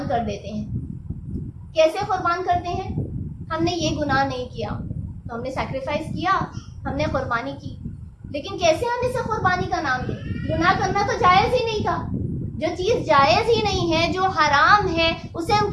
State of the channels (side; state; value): both; identical; correlation 1.00